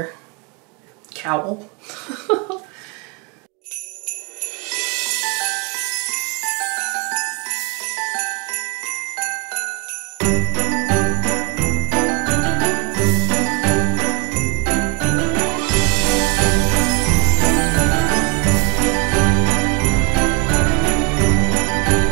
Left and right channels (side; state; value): left; quieter; 30.8 dB